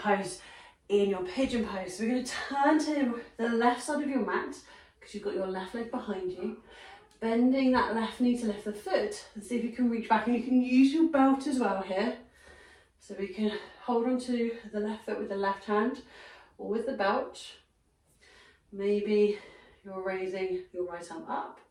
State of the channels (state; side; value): identical; both; correlation 1.00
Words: in your pigeon pose. So we're going to turn to the left side of your mat, because you've got your left leg behind you, bending that left knee to lift the foot, and see if you can reach back. And you can use your belt as well here, so we can hold on to the left foot with the left hand or with the belt. Maybe you're raising your right arm up,